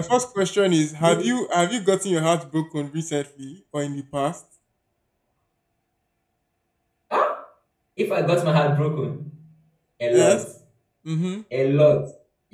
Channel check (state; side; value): identical; both; correlation 1.00